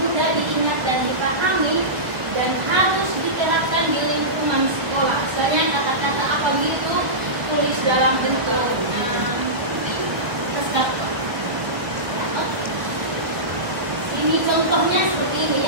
mudah diingat dan dipahami dan harus diterapkan di lingkungan sekolah. Misalnya kata-kata apa gitu tulis dalam bentuk ini contohnya seperti ini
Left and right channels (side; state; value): left; late; 1.3 ms